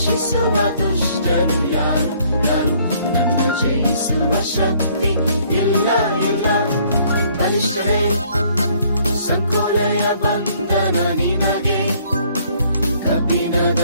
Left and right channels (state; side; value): inverted; both; correlation -0.62